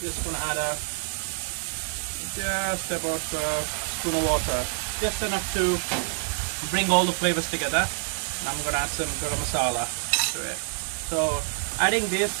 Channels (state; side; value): silent; left; digital silence